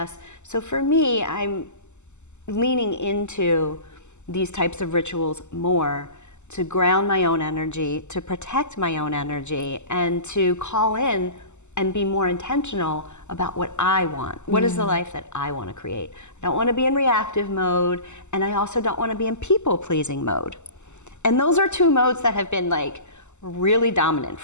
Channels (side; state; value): right; late; 0.83 ms